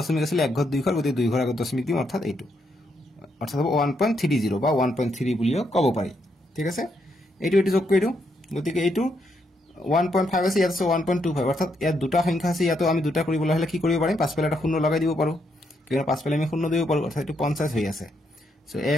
আছিল এক ঘৰ দুই ঘৰ গতি দুই ঘৰ আগত দশমিক দিম অৰ্থাৎ এইটো অৰ্থাৎ হ'ব 1.30 বা 1.3 বুলিও ক'ব পাৰি ঠিক আছে এইটো যোগ কৰি দিও গতিকে এইটো 1.5 আছে ইয়াত আছে 1.25 অৰ্থাৎ ইয়াত দুটা সংখ্যা আছে ইয়াতো আমি দুটা কৰিবলৈ হলে কি কৰিব পাৰিম পাছফালে এটা শূন্য লগাই দিব পাৰো কিয়নো পাছফালে আমি শূন্য দিব পাৰো অৰ্থাৎ এইটো 50 হৈ আছে সো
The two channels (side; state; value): both; normal; correlation 0.78